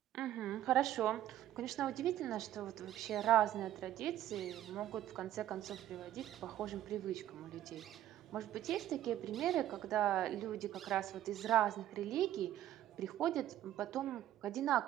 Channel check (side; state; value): left; quieter; 12.6 dB